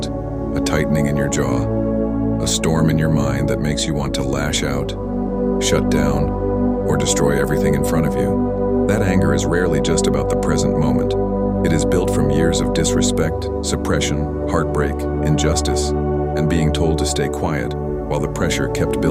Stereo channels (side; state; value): both; identical; correlation 1.00